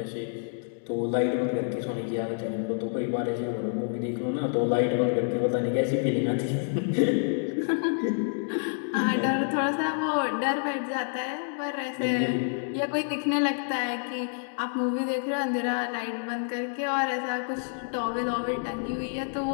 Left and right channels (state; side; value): silent; right; digital silence